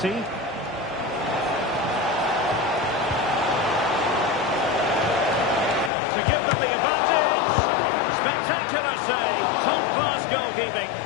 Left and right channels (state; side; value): drops out; right; at 5.9 s